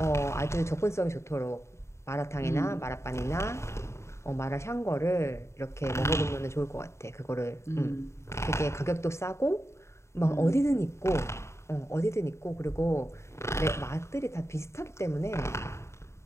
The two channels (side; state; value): right; late; 0.13 ms